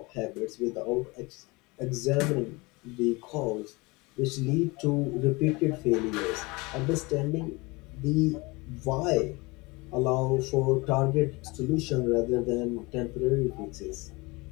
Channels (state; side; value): quieter; right; 25.0 dB